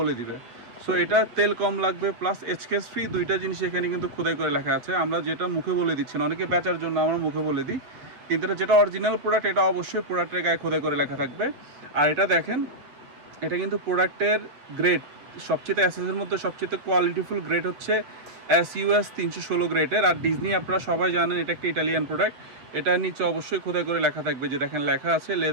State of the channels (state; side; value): late; left; 8.0 ms